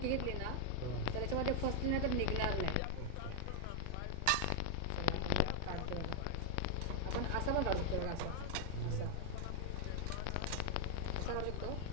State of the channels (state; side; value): different; both; correlation 0.00